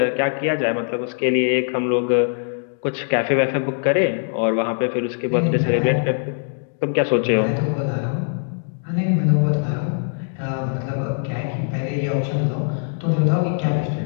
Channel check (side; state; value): right; silent; digital silence